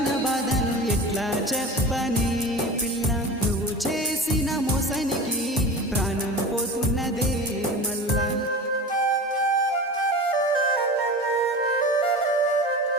బాధను ఎట్లా చెప్పని పిల్ల నువ్వు చేసిన మోసానికి ప్రాణం పోతున్నదే మళ్ళా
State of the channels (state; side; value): normal; both; correlation 0.33